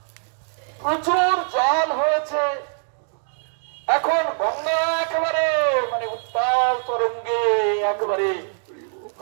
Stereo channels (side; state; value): left; silent; 63 dB below the other